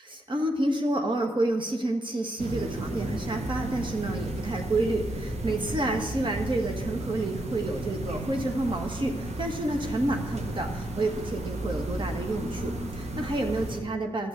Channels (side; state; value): both; normal; correlation 0.80